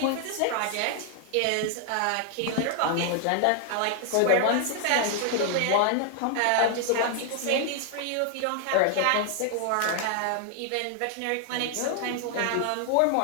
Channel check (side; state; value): both; different; correlation 0.00